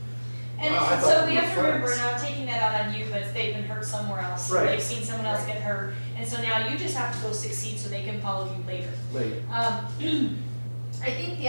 And Wow, I thought so we we were have to remember, friends. now taking that out on you, but they've been hurt somewhere else. Right. They've seen someone else get hurt, and so now you just have to go succeed so they can follow you later. Later. I think the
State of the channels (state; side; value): inverted; both; correlation -1.00